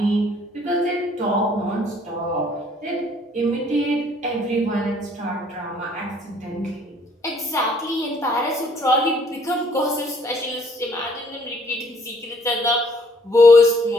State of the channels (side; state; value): both; normal; correlation 0.62